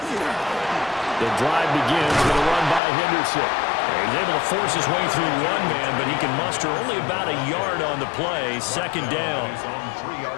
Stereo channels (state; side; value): drops out; right; at 2.8 s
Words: The drive begins with a run by Henderson. He's able to force his way through one man, but he can muster only about a yard on the play. Second down.